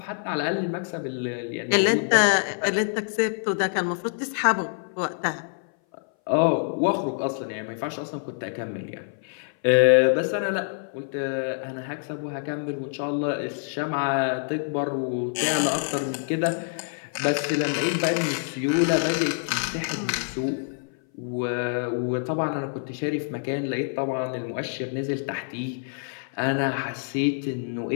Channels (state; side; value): silent; right; 58 dB below the other